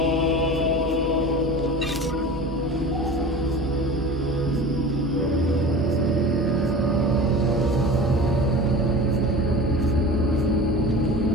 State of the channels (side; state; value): both; normal; correlation 0.35